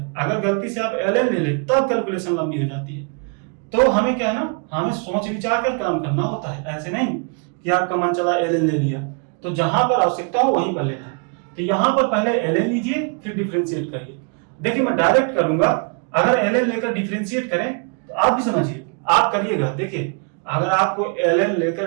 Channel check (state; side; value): quieter; left; 37.5 dB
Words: अगर गलती से आप ln ले लें तब कैलकुलेशन लंबी हो जाती है। तो हमें क्या है ना, हमें सोच विचार कर काम करना होता है, ऐसे नहीं कि आपका मन चला ln ले लिया। तो जहां पर आवश्यकता हो वहीं पर लेना है। तो यहां पर पहले ln लीजिए, फिर डिफरेंशिएट करिए। देखिए, मैं डायरेक्ट करूंगा, अगर ln लेकर डिफरेंशिएट करें तो आप भी समझिए, आप करिएगा। देखिए, अगर आपको ln